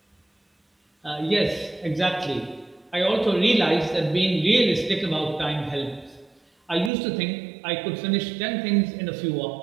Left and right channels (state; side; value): drops out; left; at 6.9 s